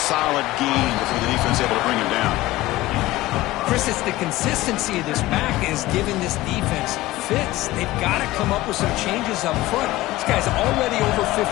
gain before the defense is able to bring him down. Chris, it's the consistency of this back is giving this defense fits. They've got to come up with some changes up front. This guy's already over 50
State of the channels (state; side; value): quieter; right; 17.4 dB